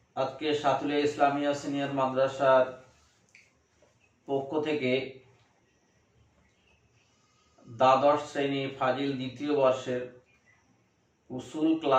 আজকে সাতুলিয়া ইসলামিয়া সিনিয়র মাদ্রাসার পক্ষ থেকে দ্বাদশ শ্রেণী ফাজিল দ্বিতীয় বর্ষের উসুল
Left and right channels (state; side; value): identical; both; correlation 1.00